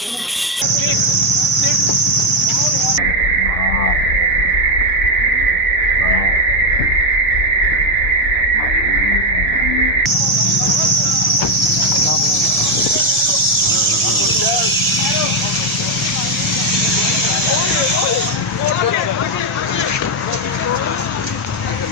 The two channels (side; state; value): both; normal; correlation 0.05